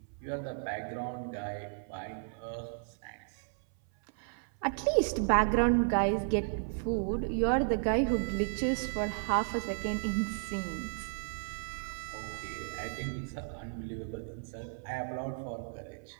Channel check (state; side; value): silent; left; 55 dB below the other